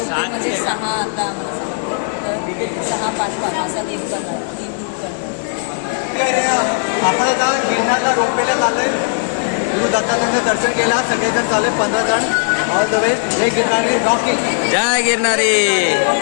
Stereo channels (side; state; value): right; silent; digital silence